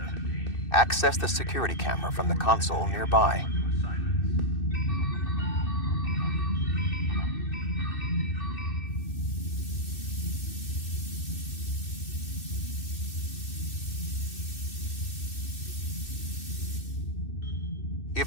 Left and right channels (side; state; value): right; late; 2.6 ms